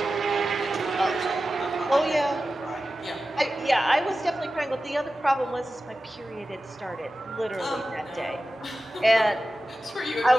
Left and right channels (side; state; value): both; normal; correlation 0.94